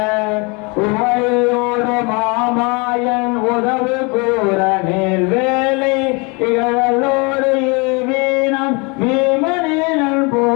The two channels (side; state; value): right; quieter; 29.7 dB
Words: உமையோடு மாமாயன் உதவு கூற நேர் வேலை இகழோடு வீணம் வீமனேனல்